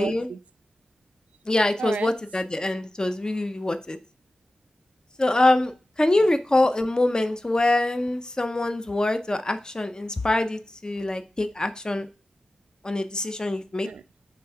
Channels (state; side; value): normal; both; correlation 0.95